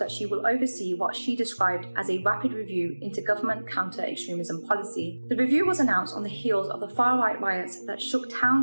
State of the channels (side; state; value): both; inverted; correlation -1.00